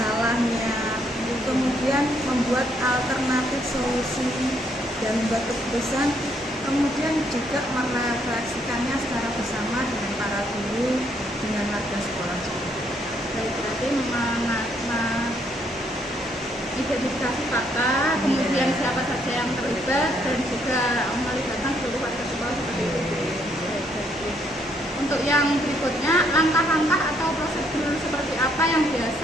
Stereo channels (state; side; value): normal; both; correlation 0.71